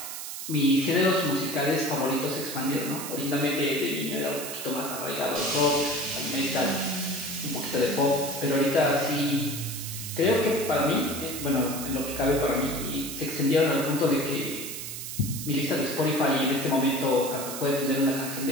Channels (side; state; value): right; noise; hiss, 7 dB below the sound